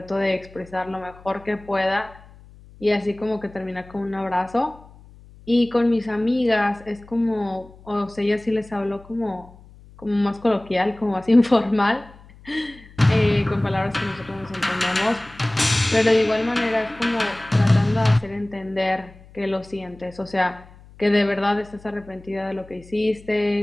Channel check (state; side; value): noise; left; hum, 23 dB below the sound